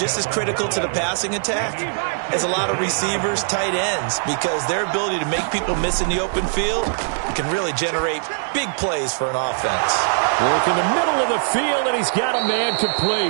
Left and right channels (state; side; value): silent; left; 65 dB below the other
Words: as critical to the passing attack as a lot of receivers, tight ends, because their ability to make people miss in the open field can really generate big plays for an offense. Work in the middle of the field, and he's got a man